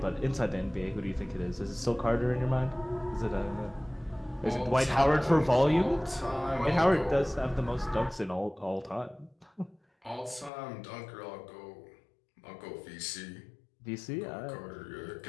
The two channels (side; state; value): right; drops out; at 10.5 s